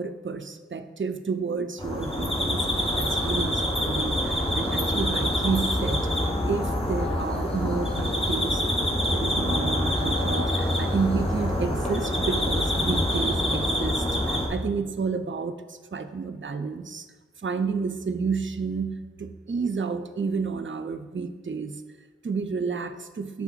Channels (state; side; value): normal; both; correlation 0.67